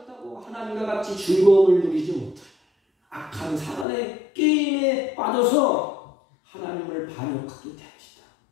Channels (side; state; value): right; drops out; at 3.9 s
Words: 하나님과 같이 즐거움을 누리지 못해요. 악한 사단의 게임에 빠져서 하나님을 반역하게 됩니다.